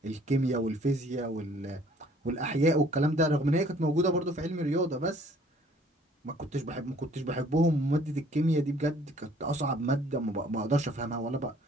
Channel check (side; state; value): both; normal; correlation 0.57